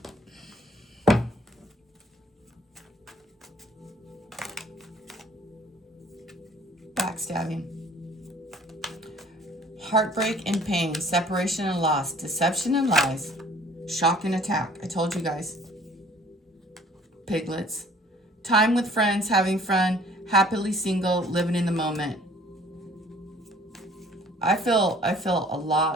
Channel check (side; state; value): both; normal; correlation 0.55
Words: Backstabbing. Heartbreak and pain, separation and loss, deception and lies, shock and attack. I told you guys. Piglets. Time with friends, having fun, happily single, living in the moment. I feel a